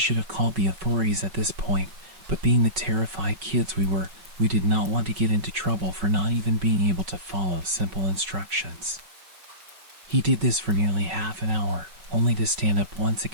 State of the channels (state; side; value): late; left; 5.3 ms